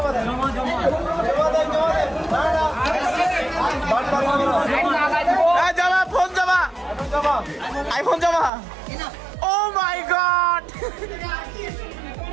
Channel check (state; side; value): drops out; left; at 8.5 s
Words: জমা ফোন জমা আইফোন জমা ও মাই গড